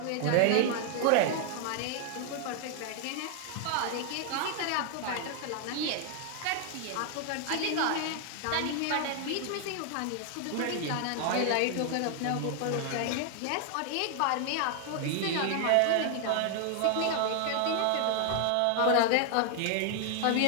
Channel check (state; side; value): different; both; correlation 0.00